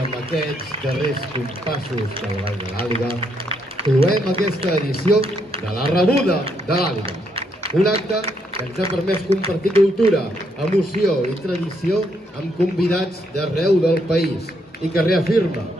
aquests darrers compassos del Ball de l'Àliga, cloem aquesta edició de la Rebuda de l'Àliga. Un acte que ens ha permès compartir cultura, emoció i tradició amb convidats d'arreu del país i que reafirma,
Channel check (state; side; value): normal; both; correlation 0.75